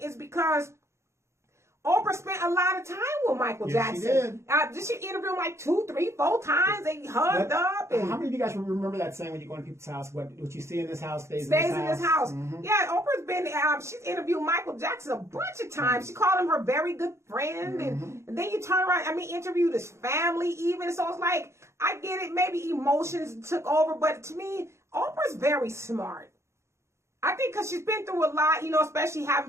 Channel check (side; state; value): left; late; 0.13 ms